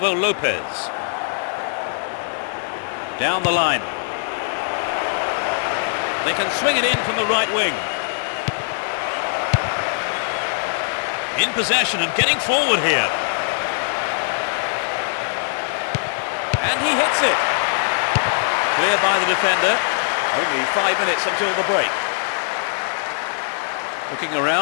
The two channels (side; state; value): right; silent; 65 dB below the other